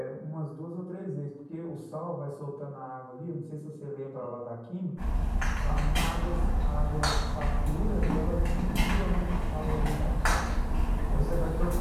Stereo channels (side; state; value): both; identical; correlation 1.00